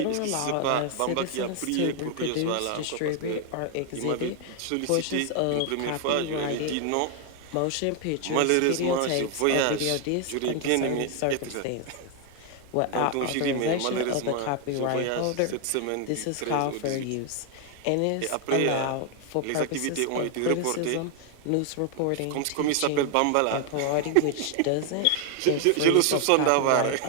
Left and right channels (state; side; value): different; both; correlation 0.00